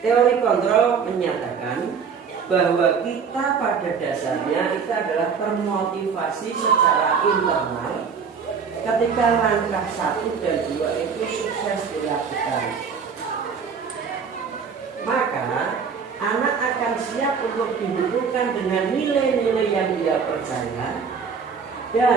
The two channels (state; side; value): quieter; left; 6.1 dB